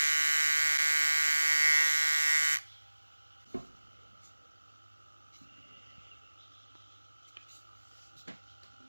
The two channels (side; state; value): both; inverted; correlation -1.00